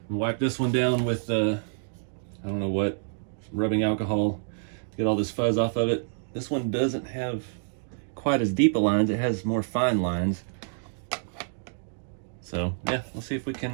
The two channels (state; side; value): silent; left; digital silence